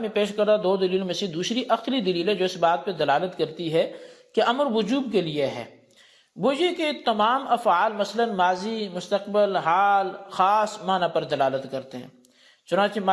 میں پیش کردہ دو دلیلوں میں سے دوسری عقلی دلیل ہے جو اس بات پہ دلالت کرتی ہے کہ امر وجوب کے لیے ہے، وہ یہ کہ تمام افعال مثلا ماضی، مستقبل، حال خاص معنی پر دلالت کرتے ہیں، چنانچہ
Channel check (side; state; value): both; identical; correlation 1.00